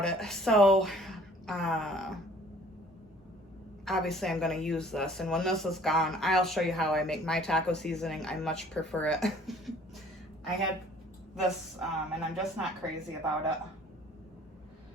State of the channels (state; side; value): normal; both; correlation 0.54